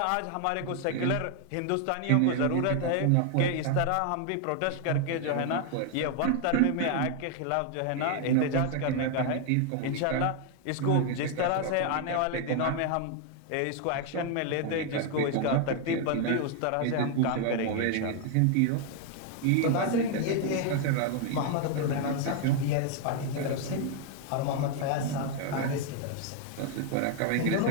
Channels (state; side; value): different; both; correlation 0.00